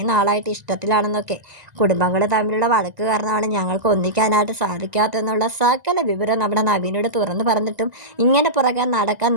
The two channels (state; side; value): late; left; 1.9 ms